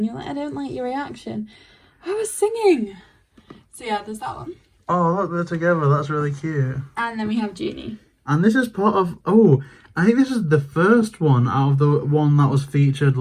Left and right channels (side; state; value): both; identical; correlation 1.00